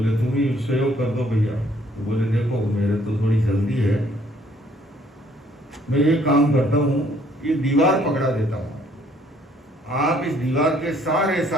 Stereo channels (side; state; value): both; normal; correlation 0.63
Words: तुम ही सहयोग कर दो भैया। तो बोले देखो मेरे तो थोड़ी जल्दी है, मैं ये काम करता हूँ, ये दीवार पकड़ा देता हूँ, आप इस दीवार के